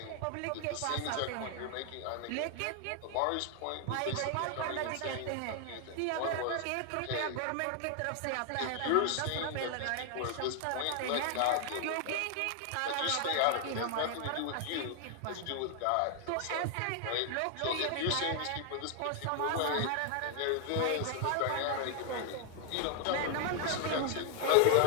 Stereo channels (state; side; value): different; both; correlation 0.00